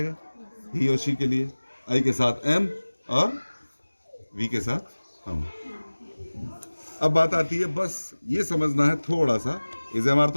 ही और शी के लिए आई के साथ एम और वी के साथ हम। अब बात आती है, बस ये समझना है थोड़ा सा, इज एम आर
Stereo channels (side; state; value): both; inverted; correlation -1.00